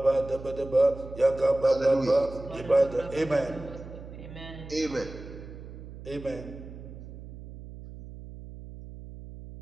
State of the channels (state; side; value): noise; right; hum, 14 dB below the sound